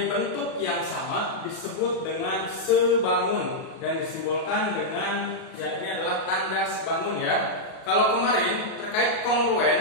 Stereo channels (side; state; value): right; late; 37 ms